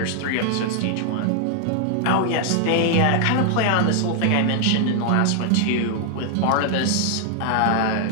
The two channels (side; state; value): both; different; correlation 0.00